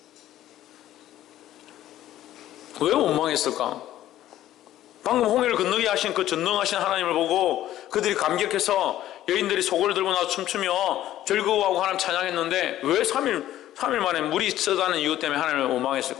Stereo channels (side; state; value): right; quieter; 13.2 dB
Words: 왜 원망했을까? 방금 홍해를 건너게 하신 그 전능하신 하나님을 보고 그들이 감격해서 여인들이 소고를 들고 나서 춤추며 즐거워하고 하나님 찬양했는데 왜 3일 만에 물이 쓰다는 이유 때문에 하나님을